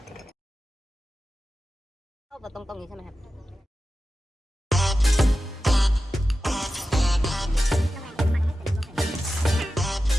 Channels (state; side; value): normal; both; correlation 0.93